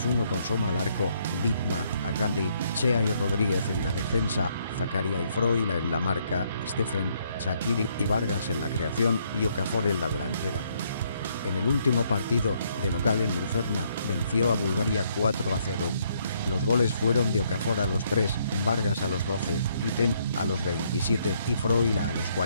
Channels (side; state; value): both; inverted; correlation -0.70